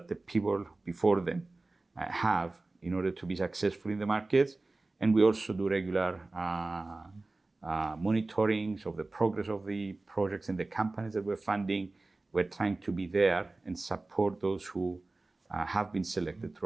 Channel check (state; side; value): quieter; left; 3.2 dB